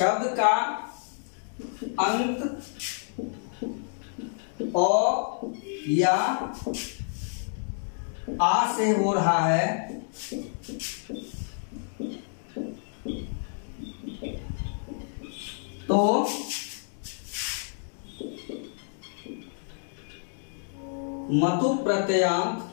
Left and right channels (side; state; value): right; silent; digital silence